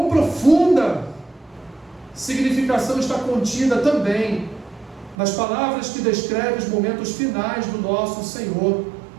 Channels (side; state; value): left; drops out; at 5.2 s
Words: profunda significação está contida também nas palavras que descrevem os momentos finais do nosso Senhor.